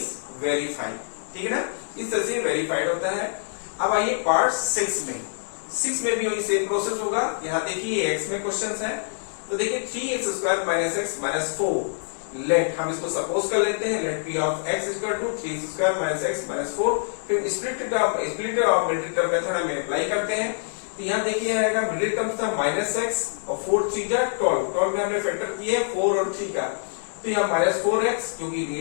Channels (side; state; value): right; silent; digital silence